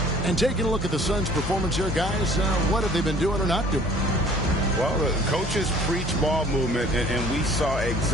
And taking a look at the Suns' performance here, guys, what have they been doing or not doing? Well, the coaches preach ball movement, and we saw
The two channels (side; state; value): both; normal; correlation 0.53